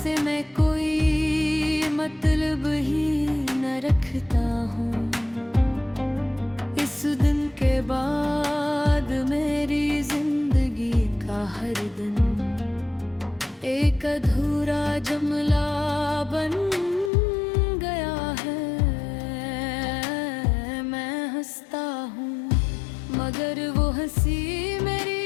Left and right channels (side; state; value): right; drops out; at 17.1 s